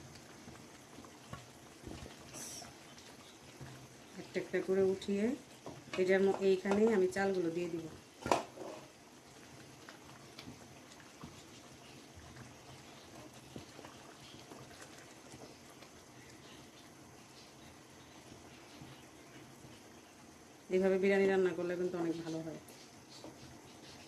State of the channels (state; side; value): identical; both; correlation 1.00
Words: একটা একটা করে উঠিয়ে এটার এইখানেই আমি চালগুলো দিয়ে দিব। এইভাবে বিরিয়ানি রান্না করলে কিন্তু অনেক ভালো হয়।